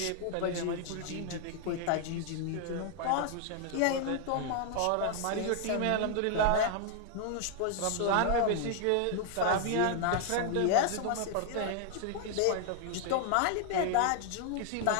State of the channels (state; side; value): different; both; correlation 0.00